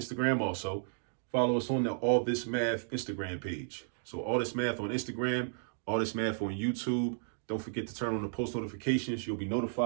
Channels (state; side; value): silent; left; digital silence